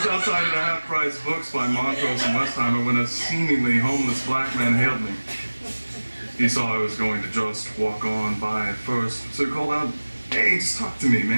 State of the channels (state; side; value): inverted; both; correlation -1.00